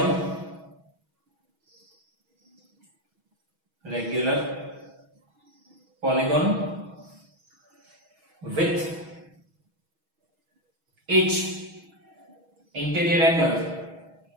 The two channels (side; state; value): left; late; 6.2 ms